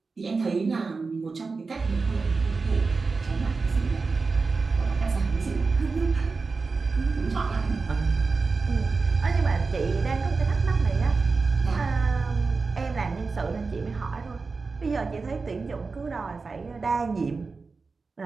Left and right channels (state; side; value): quieter; left; 4.3 dB